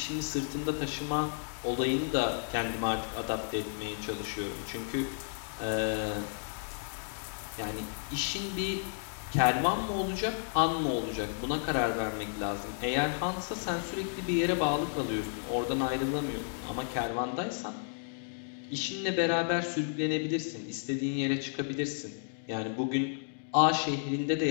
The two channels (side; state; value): right; silent; digital silence